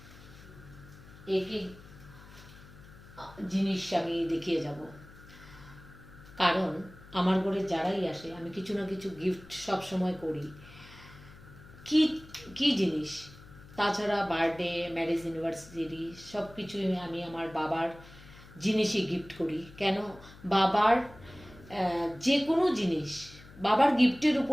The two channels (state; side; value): noise; left; hum, 20 dB below the sound